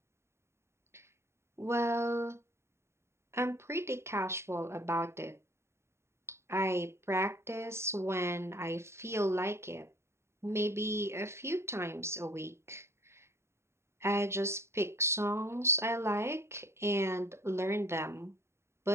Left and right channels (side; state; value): left; late; 0.13 ms